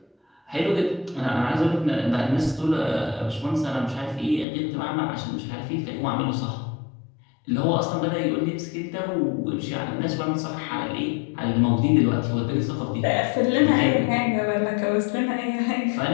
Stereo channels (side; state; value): right; drops out; at 4.5 s